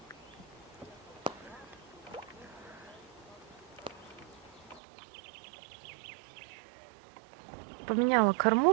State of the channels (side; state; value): left; drops out; at 4.8 s